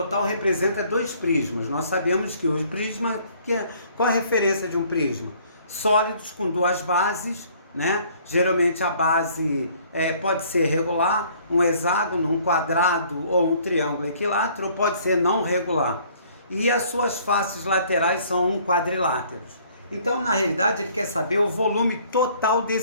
representa dois prismas. Nós sabemos que o prisma, qual a referência de um prisma? Sólidos com duas bases, né? Geralmente a base pode ser regular, um hexágono, um quadrado ou um triângulo equilátero, ou pode ser não regular. E as suas faces laterais são quadriláteros. Então, na realidade, ele quer saber o volume total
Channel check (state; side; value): inverted; both; correlation -0.59